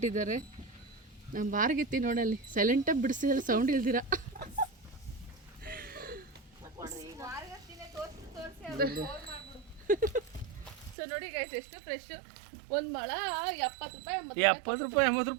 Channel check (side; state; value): left; drops out; at 11.0 s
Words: ನಮ್ಮ ಬಾರ್ಗೆತ್ತಿ ನೋಡಲ್ಲಿ ಸೈಲೆಂಟಾಗಿ ಬಿಡಿಸಿದ್ರೆ ಸೌಂಡ್ ಇಲ್ದಿರ. ಸೊ ನೋಡಿ ಗೈಸ್ ಎಷ್ಟು ಫ್ರೆಶ್. ಒಂದು ಮೊಳ 70 ರೂಪಾಯಿ 70 ರೂಪಾಯಿ 80